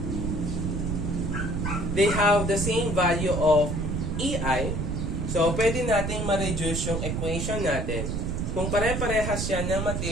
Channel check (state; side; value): noise; right; rumble, 1 dB below the sound